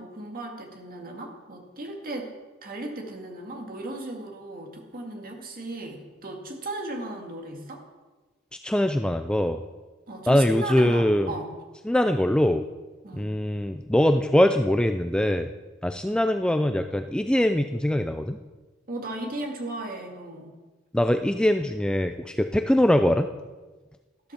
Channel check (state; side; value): normal; both; correlation 0.91